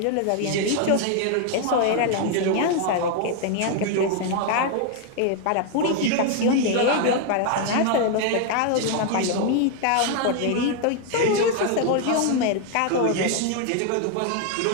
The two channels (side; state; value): both; different; correlation 0.00